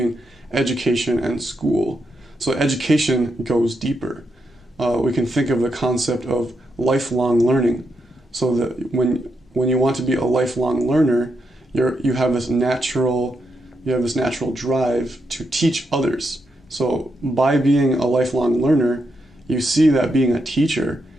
education and school. So education goes deeper. We can think of the concept of lifelong learning. So that when you want to be a lifelong learner, you have this natural drive to teach others. So by being a lifelong learner, you see that being a teacher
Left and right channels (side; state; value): both; normal; correlation 0.82